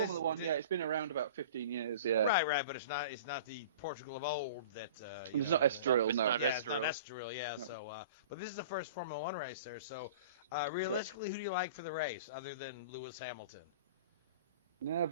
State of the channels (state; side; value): inverted; both; correlation -0.41